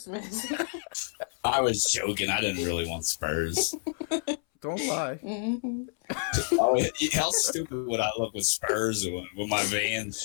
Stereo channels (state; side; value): silent; right; 59 dB below the other